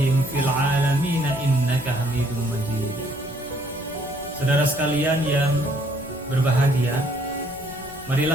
fil 'alamin innaka Hamidum Majid. Saudara sekalian yang berbahagia,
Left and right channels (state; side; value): normal; both; correlation 0.65